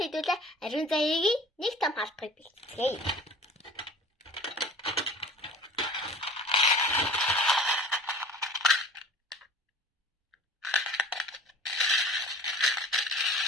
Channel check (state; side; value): normal; both; correlation 0.44